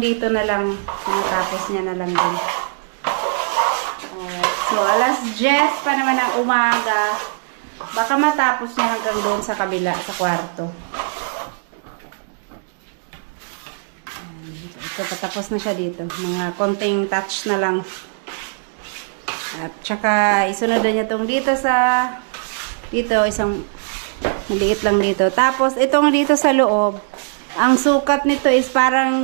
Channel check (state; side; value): silent; left; digital silence